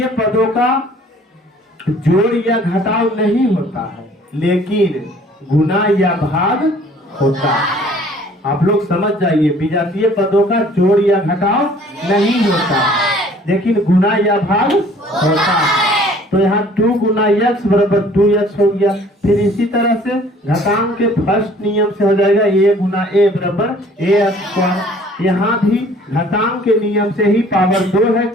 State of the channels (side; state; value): both; normal; correlation 0.54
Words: पदों का जोड़ या घटाव नहीं होता है, लेकिन गुना या भाग होता है। आप लोग समझ जाइए, विजातीय पदों का जोड़ या घटाव नहीं होता है, लेकिन गुना या भाग होता है। तो यहाँ 2 गुना x बराबर 2x हो गया। फिर इसी तरह से घातांक के फर्स्ट नियम से हो जाएगा a गुना a बराबर a स्क्वायर। यहाँ भी घातांक के नियम से ही पावर 2 है,